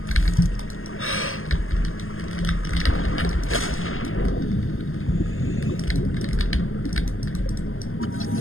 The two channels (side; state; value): right; late; 0.60 ms